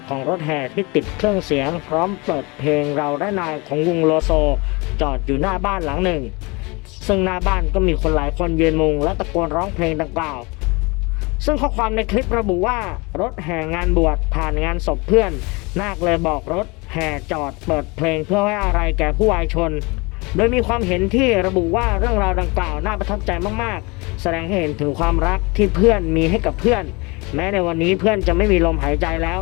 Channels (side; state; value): right; quieter; 26.6 dB